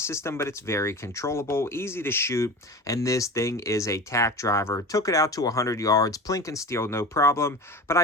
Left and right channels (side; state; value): both; normal; correlation 0.32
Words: system, but it's very controllable, easy to shoot, and this thing is a tack driver. Took it out to 100 yards, plink and steel, no problem, but